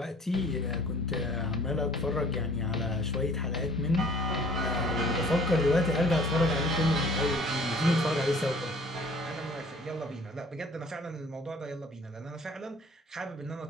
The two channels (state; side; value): normal; both; correlation 0.51